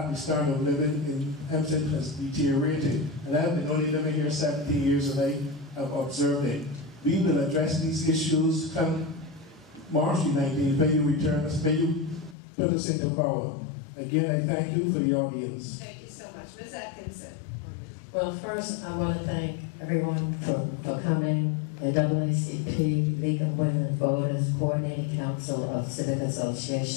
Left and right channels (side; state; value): right; drops out; at 12.4 s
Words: the standard of living in Hempstead has deteriorated. And I've been only living here 17 years and I have observed it. We will address these issues come March 19th, when you return us, when you put us into power. Again, I thank you for the audience. Thank you so much. Ms. Atkinson. Well, first, I want to thank everyone for coming, the NAACP, League of Women Voters, Coordinating Council of Civic